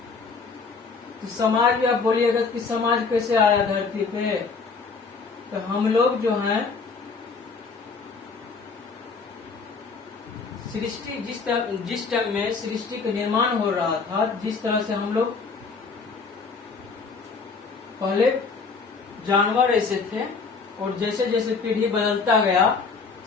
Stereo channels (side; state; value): right; quieter; 4.8 dB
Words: तो समाज भी आप बोलिएगा कि समाज कैसे आया धरती पे, तो हम लोग जो हैं सृष्टि, जिस टाइम में सृष्टि का निर्माण हो रहा था, जिस तरह से हम लोग पहले जानवर ऐसे थे, और जैसे जैसे पीढ़ी बदलता गया,